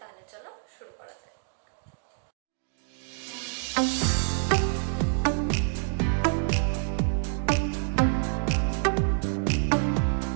চলো শুরু করা যাক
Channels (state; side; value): silent; left; 60 dB below the other